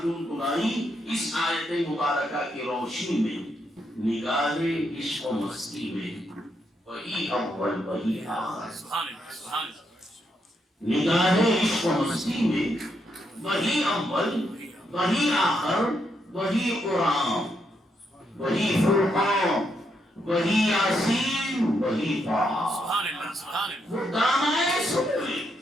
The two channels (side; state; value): both; normal; correlation 0.79